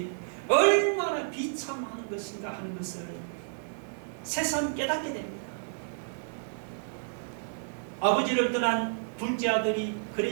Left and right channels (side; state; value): left; silent; 57 dB below the other